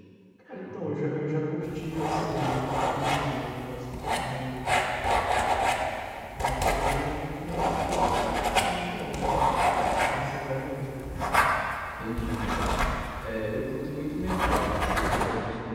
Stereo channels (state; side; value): identical; both; correlation 1.00